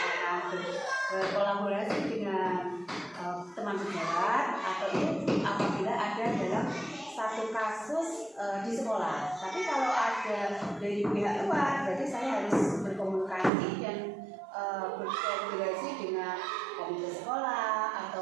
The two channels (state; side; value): drops out; left; at 13.5 s